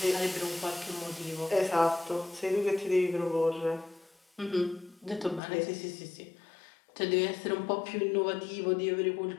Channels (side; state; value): right; drops out; at 5.4 s